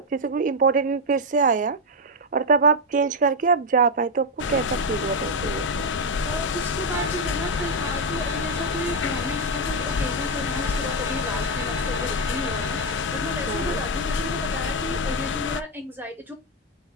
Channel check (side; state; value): both; normal; correlation 0.04